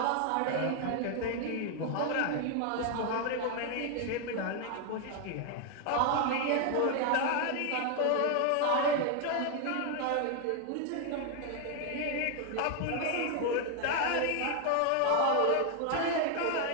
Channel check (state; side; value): different; both; correlation 0.00